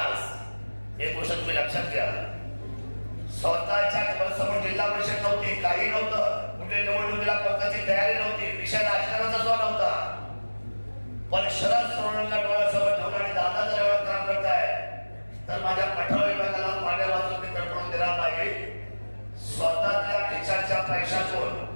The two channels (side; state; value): both; inverted; correlation -1.00